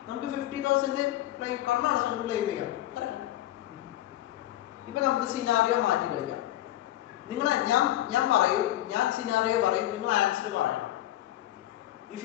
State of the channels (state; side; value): quieter; right; 14.6 dB